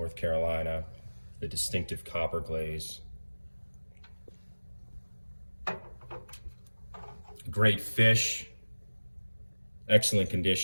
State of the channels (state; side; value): inverted; both; correlation -1.00